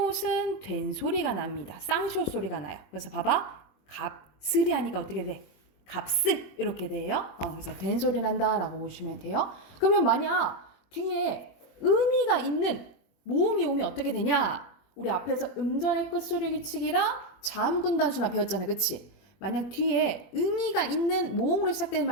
된 소리가 납니다. 쌍시옷 소리가 나요. 그래서 봐봐. 값을이 하니까 어떻게 돼? 값을 이렇게 돼요. 그래서 된 소리 난다라고 보시면 돼요. 그러면 만약 뒤에 의미가 있는 모음이 오면 어떻게 되냐? 우리 앞에서 음절의 끝소리 규칙이랑 자음군 단순화 배웠잖아요. 그치? 만약 뒤에 의미가 있는 모음으로 시작되는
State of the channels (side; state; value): right; late; 21 ms